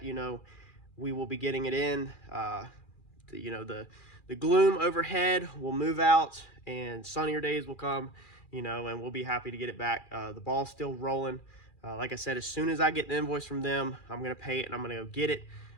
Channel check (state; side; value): late; right; 2.4 ms